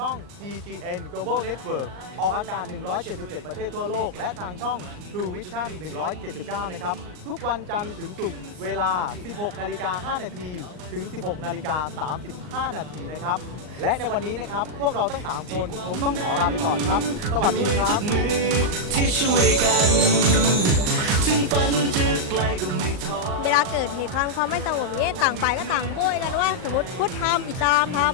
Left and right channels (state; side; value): late; left; 39 ms